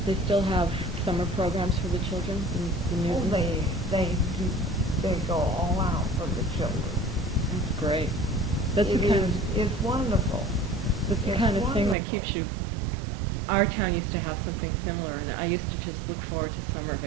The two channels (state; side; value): drops out; left; at 12.0 s